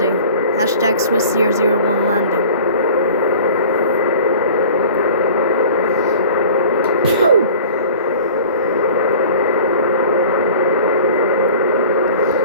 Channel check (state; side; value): inverted; both; correlation -0.44